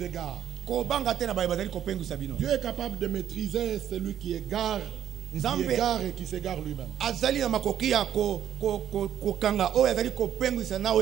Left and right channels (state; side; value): quieter; left; 10.3 dB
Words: égare. Dieu est capable de maîtriser celui qui égare. Et qui s'égare lui-même.